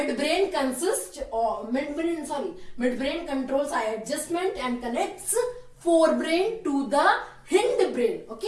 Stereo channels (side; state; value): both; identical; correlation 1.00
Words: controls eye adjustment and connects forebrain to the hindbrain.